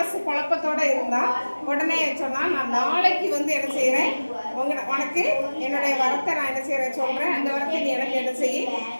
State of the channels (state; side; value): inverted; both; correlation -1.00